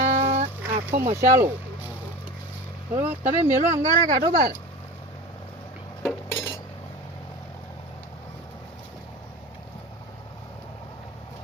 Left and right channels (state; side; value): normal; both; correlation 0.32